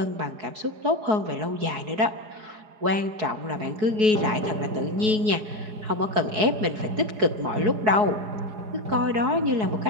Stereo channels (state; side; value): late; left; 4.7 ms